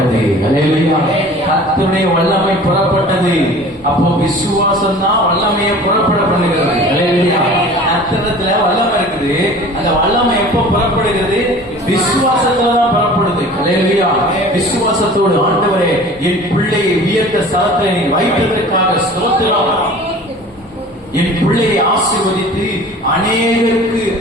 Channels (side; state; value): both; normal; correlation 0.43